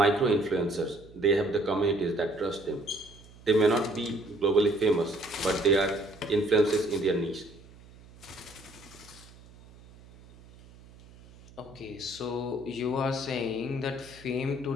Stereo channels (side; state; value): right; noise; hum, 22 dB below the sound